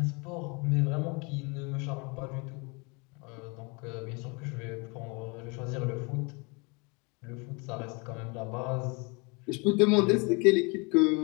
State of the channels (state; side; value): quieter; right; 30.4 dB